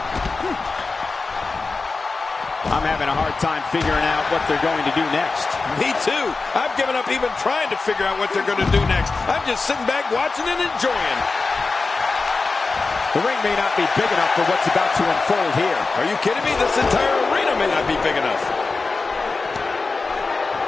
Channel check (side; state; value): right; quieter; 4.0 dB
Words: I'm having a hard time figuring out what they're going to do next. Me too. I've given up even trying to figure out what they're going to do next. I'm just sitting back watching and enjoying. The ring may not be big enough for what's about to unfold here. Are you kidding me? This entire arena may not be big enough.